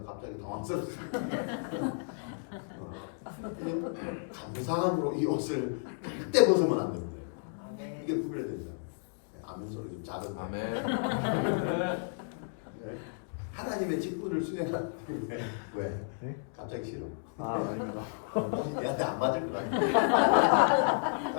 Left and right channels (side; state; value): right; silent; digital silence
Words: 갑자기 당황스럽습니다. 감사함으로 이 옷을 절대 벗으면 안 됩니다. 이게 구별된다. 아멘 소리 좀 작은 거. 하나님의 직분을 수행하는 왜? 네? 갑자기 싫어. 아닙니다. 얘한테 안 맞을 것 같아.